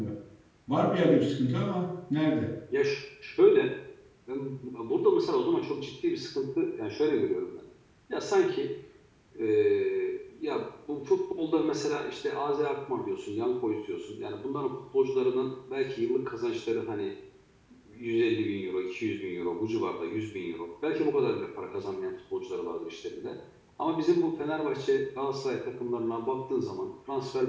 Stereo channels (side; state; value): both; identical; correlation 1.00